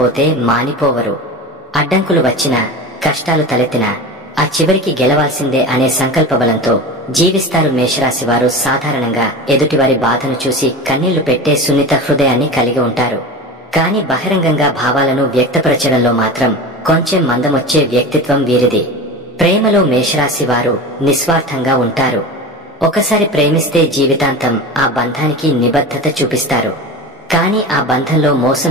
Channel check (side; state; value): both; normal; correlation 0.29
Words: మానిపోవరు. అడ్డంకులు వచ్చినా, కష్టాలు తలెత్తినా ఆ చివరికి గెలవాల్సిందే అనే సంకల్ప బలంతో జీవిస్తారు. మేషరాశి వారు సాధారణంగా ఎదుటివారి బాధను చూసి కన్నీళ్లు పెట్టే సున్నిత హృదయాన్ని కలిగి ఉంటారు. కాని బహిరంగంగా భావాలను వ్యక్తపరచడంలో మాత్రం కొంచెం మందమొచ్చే వ్యక్తిత్వం వీరిది. ప్రేమలో మేషరాశి వారు నిస్వార్థంగా ఉంటారు. ఒకసారి ప్రేమిస్తే జీవితాంతం ఆ బంధానికి నిబద్ధత చూపిస్తారు. కాని ఆ బంధంలో